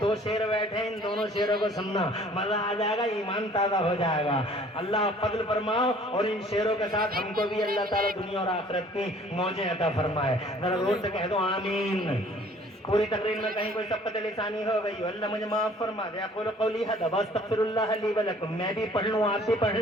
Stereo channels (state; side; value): normal; both; correlation 0.54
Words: دو شعر بیٹھے ہیں، ان دونوں شعروں کو سننا، مزہ آ جائے گا، ایمان تازہ ہو جائے گا، اللہ فضل فرماؤ، اور ان شعروں کے ساتھ ہم کو بھی اللہ تعالیٰ دنیا اور آخرت کی موجیں عطا فرمائے، ذرا زور سے کہہ دو آمین۔ پوری تقریر میں کہیں کوئی سبقت لسانی ہو گئی، اللہ مجھے معاف فرما دے، اقول قولی ھذا واستغفر اللہ لی ولکم، میں بھی پڑھ لوں آپ بھی پڑھ